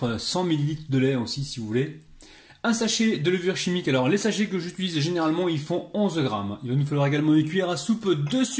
100 ml de lait aussi si vous voulez. Un sachet de levure chimique. Alors, les sachets que j'utilise généralement, ils font 11 g. Il va nous falloir également une cuillère à soupe de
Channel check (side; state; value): both; identical; correlation 1.00